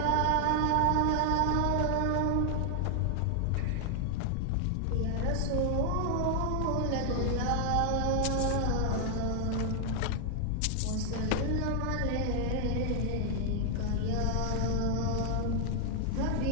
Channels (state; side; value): different; both; correlation 0.00